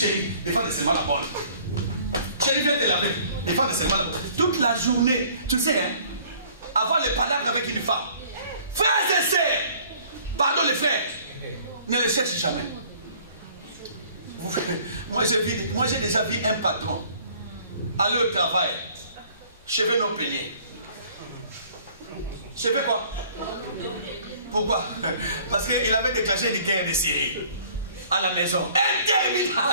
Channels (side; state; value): both; inverted; correlation -0.55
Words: défends seulement la bonne. Chérie, viens te laver, défends seulement la bonne. Toute la journée, tu sais, hein, avoir le palabre avec une femme. Frères et sœurs, pardon les frères, ne les cherche jamais. Moi j'ai déjà vu un patron aller au travail, cheveux non peignés. Cheveux quoi? Pourquoi? Parce qu'il avait déclenché une guerre de Syrie à la maison.